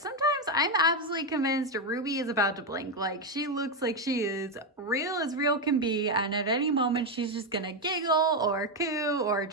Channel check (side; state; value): both; normal; correlation 0.07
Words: I'm absolutely convinced Ruby is about to blink. Like she looks like she is real as real can be, and at any moment she's just gonna giggle or coo or